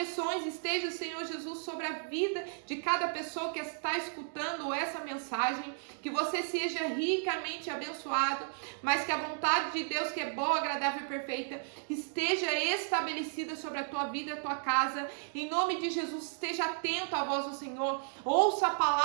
esteja, Senhor Jesus, sobre a vida de cada pessoa que está escutando essa mensagem. Que você seja ricamente abençoado, mas que a vontade de Deus, que é boa, agradável e perfeita, esteja estabelecida sobre a tua vida e a tua casa. Em nome de Jesus, esteja atento à voz do Senhor, ouça a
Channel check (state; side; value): silent; left; digital silence